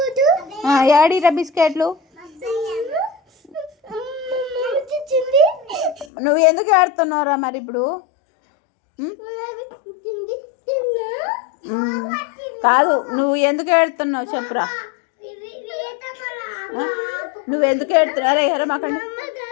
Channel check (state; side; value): drops out; right; at 6.1 s